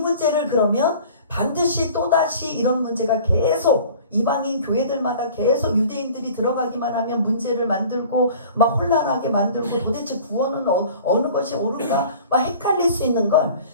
그러면 반드시 또다시 이런 문제가 계속 이방인 교회들마다 계속 유대인들이 들어가기만 하면 문제를 만들고 막 혼란하게 만들고 도대체 구원은 어느 것이 옳은가 막 헷갈릴 수 있는 걸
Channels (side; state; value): both; inverted; correlation -0.45